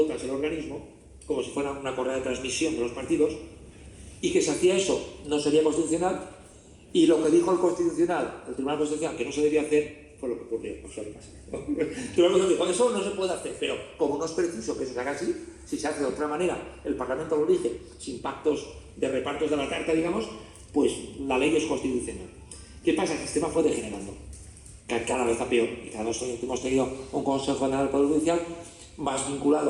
el organismo, como si fuera una correa de transmisión de los partidos, y que si hacía eso no sería constitucional. Y lo que dijo el Tribunal Constitucional que no se debía hacer fue lo que ocurrió. Eso le pasa. El Tribunal dijo: eso no se puede hacer, pero como no es preciso que eso se haga así, si se hace de otra manera, el Parlamento lo elige sin pactos de repartos de la tarta, digamos, pues la ley es constitucional. ¿Qué pasa? El sistema fue degenerando, cada vez a peor, y cada vez hemos tenido un Consejo General del Poder Judicial más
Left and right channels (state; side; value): identical; both; correlation 1.00